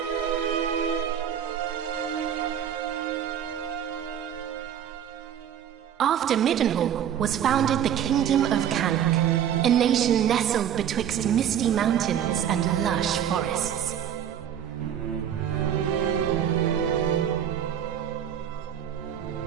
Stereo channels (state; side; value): quieter; left; 9.5 dB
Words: After Middenhall was founded the Kingdom of Cannock, a nation nestled betwixt misty mountains and lush forests.